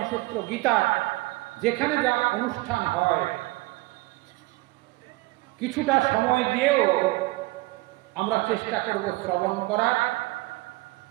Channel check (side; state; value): left; quieter; 21.6 dB